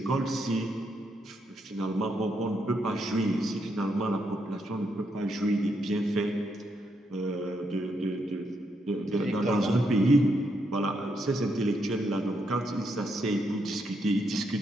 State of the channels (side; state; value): both; normal; correlation 0.78